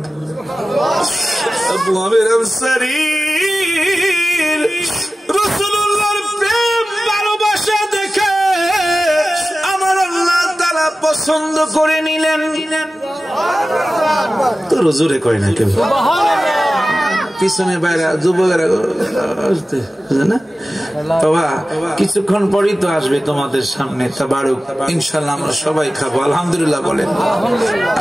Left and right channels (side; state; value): both; normal; correlation 0.95